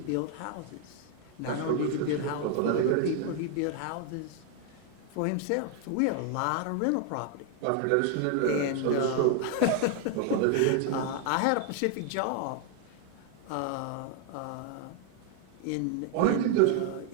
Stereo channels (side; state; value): both; different; correlation 0.01